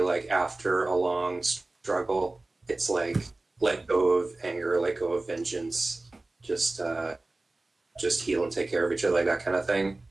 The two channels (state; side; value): quieter; left; 3.0 dB